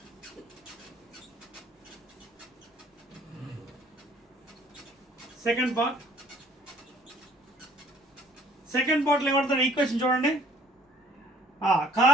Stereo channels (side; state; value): both; normal; correlation 0.58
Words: సెకండ్ పార్ట్లో ఏమంటారు ఈక్వేషన్ చూడండి.